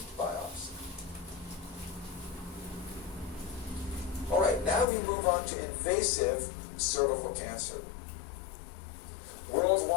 biopsy. All right, now we move on to invasive cervical cancer.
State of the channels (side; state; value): right; drops out; at 4.9 s